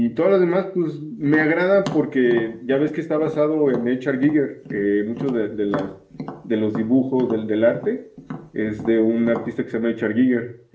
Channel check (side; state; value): both; identical; correlation 1.00